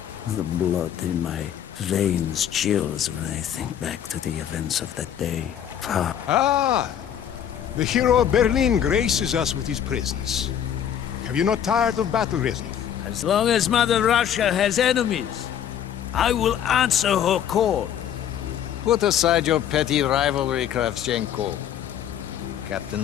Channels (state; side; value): quieter; right; 9.6 dB